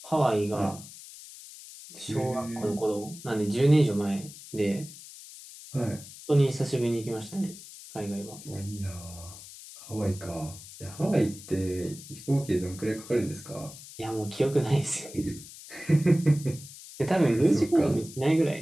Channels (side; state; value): left; noise; hiss, 16 dB below the sound